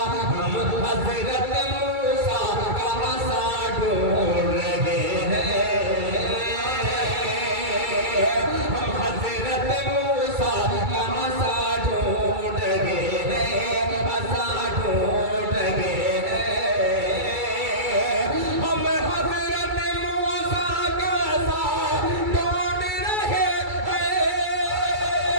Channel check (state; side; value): late; left; 2.3 ms